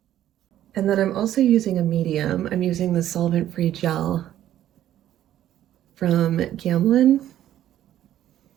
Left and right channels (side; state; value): left; quieter; 12.2 dB